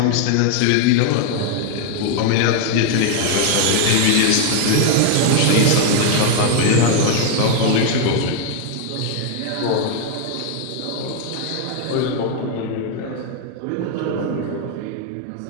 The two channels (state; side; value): different; both; correlation 0.00